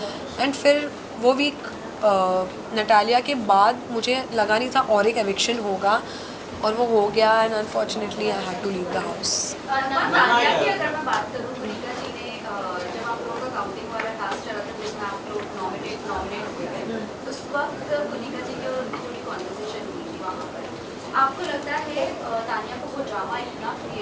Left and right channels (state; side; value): identical; both; correlation 1.00